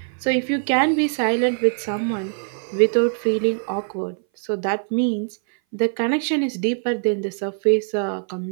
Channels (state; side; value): silent; left; 60 dB below the other